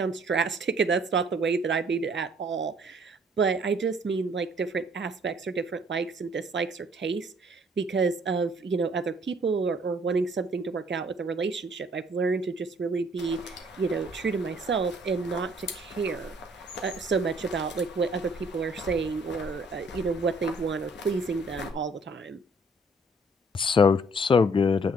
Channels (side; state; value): both; normal; correlation 0.60